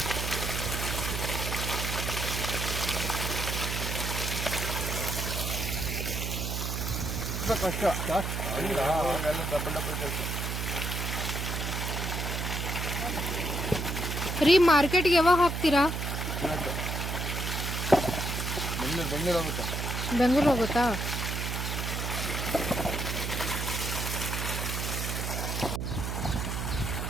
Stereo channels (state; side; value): noise; right; hum, 2 dB below the sound